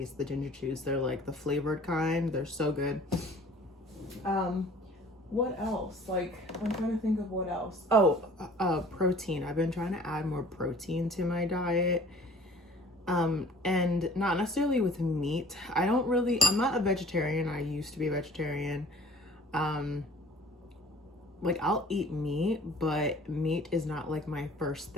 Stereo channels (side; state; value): both; normal; correlation 0.50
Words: of the ginger chews. They're like the flavored kind. They're so good. What else? Like, I'm trying to think of what else. Oh, protein. I've been trying to add more protein to my diet. And not necessarily with meat. I'm not a vegetarian. I used to be a vegetarian. Like, I'll eat meat, but meat is not like my first